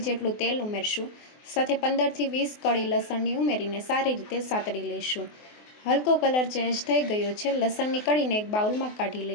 જેટલું તેલ ઉમેરશું, સાથે 15 થી 20 કળી લસણની ઉમેરીને સારી રીતે સાતળી લઈશું। હલકો કલર ચેન્જ થઈ ગયો છે, લસણની કળીને એક બાઉલમાં કાઢી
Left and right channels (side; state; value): right; late; 24 ms